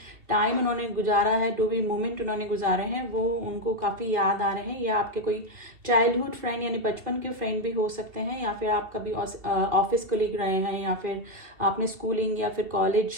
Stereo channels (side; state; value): left; late; 2.5 ms